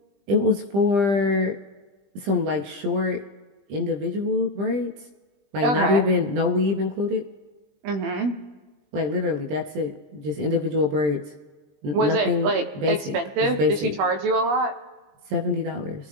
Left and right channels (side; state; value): left; late; 21 ms